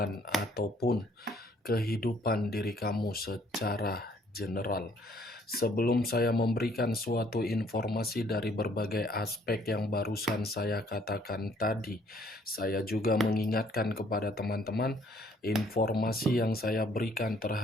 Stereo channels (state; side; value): normal; both; correlation 0.63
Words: ataupun kehidupan diri kamu secara general. Sebelum saya memberikan suatu informasi dari berbagai aspek yang barusan saya katakan tadi, saya juga mengingatkan kepada teman-teman, informasi yang saya berikan